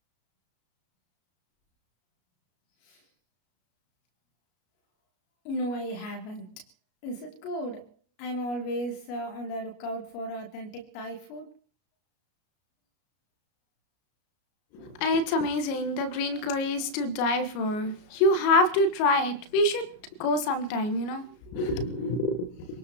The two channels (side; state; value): right; late; 33 ms